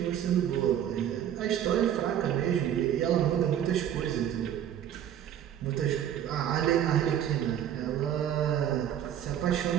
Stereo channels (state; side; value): quieter; left; 10.2 dB